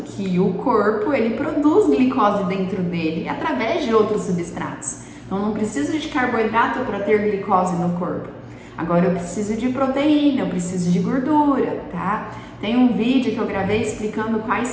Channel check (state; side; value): identical; both; correlation 1.00